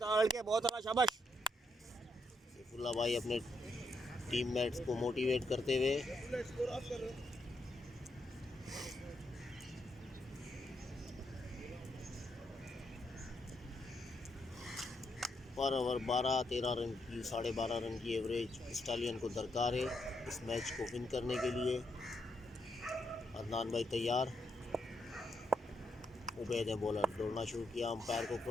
बहुत आला, शाबाश। सैफुल्लाह भाई अपने टीममेट्स को मोटिवेट करते हुए पर ओवर 12-13 रन की 12.5 रन की एवरेज स्टालियन को दरकार है इस मैच को विन करने के लिए। अदनान भाई तैयार, उबैद ने बॉलर दौड़ना शुरू किया, अंपायर को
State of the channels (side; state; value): both; normal; correlation 0.79